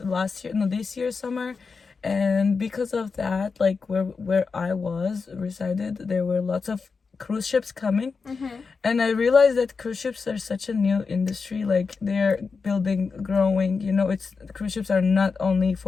year summer, and because of that, like, where I was resided, there were lots of cruise ships coming, and I realized that cruise ships are such a new industry. Like, they're growing, you know. It's cruise ships are not only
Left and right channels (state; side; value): quieter; right; 4.9 dB